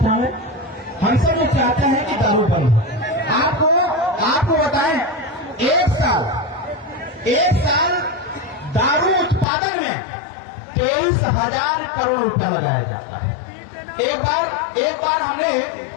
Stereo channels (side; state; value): right; drops out; at 9.5 s